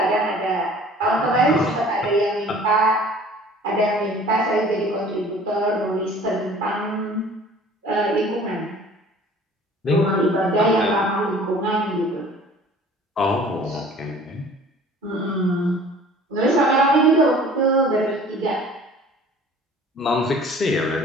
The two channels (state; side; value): normal; both; correlation 0.49